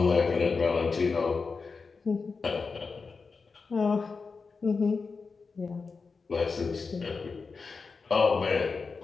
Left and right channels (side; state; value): right; quieter; 4.7 dB